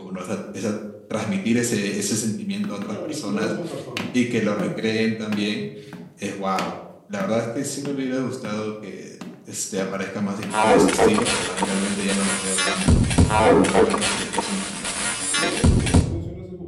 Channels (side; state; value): both; identical; correlation 1.00